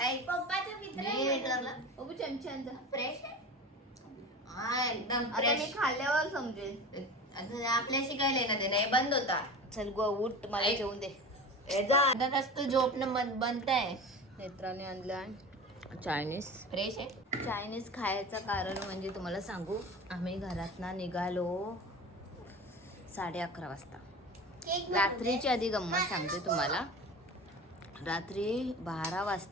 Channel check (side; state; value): both; normal; correlation 0.33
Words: ऐक पप्पाचा मित्र आहे म्हणून. बघू चमच्यांचा फ्रेश आहे हा, एकदम आता मी फ्रेश. खाल्ल्यावर समजेल. आपल्याशी काय लेना देणं, हे बंद होता. चल गो उठ, मला ऐक. जेवून दे. तू झोपणं बंद आहे. नेत्राने आणला चायनीज. फ्रेश आहे. चायनीज खायचं कारण म्हणजे तुम्हाला सांगू, आम्ही घरातनं निघालो 11:30 वाजता. केक रात्रीची आधी गंमत सांगते तुम्हाला. रात्री 12